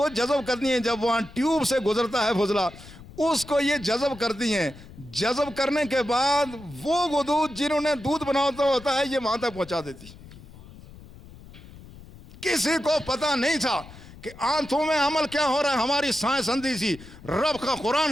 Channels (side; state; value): left; noise; rumble, 19 dB below the sound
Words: جذب کرتی ہیں۔ جب وہاں ٹیوب سے گزرتا ہے فضلہ، اس کو یہ جذب کرتی ہیں۔ جذب کرنے کے بعد وہ غدود جنہوں نے دودھ بناتا ہوتا ہے یہ وہاں تک پہنچا دیتی۔ کسی کو پتا نہیں تھا کہ آنتوں میں عمل کیا ہو رہا ہے، ہماری سائنس اندھی سی۔ رب کا قرآن